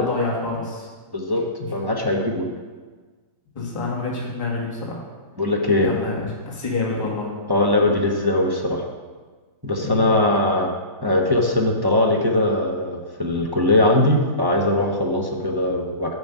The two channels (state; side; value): late; left; 1.1 ms